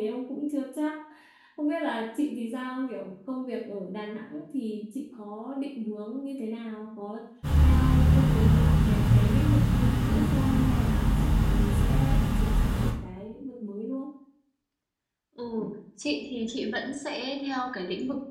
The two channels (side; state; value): both; identical; correlation 1.00